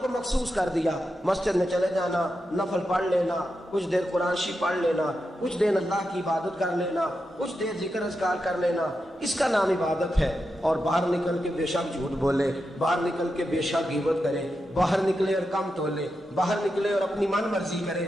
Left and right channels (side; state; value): both; normal; correlation 0.88